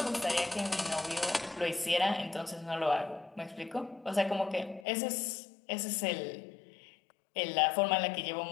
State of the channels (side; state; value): right; drops out; at 4.9 s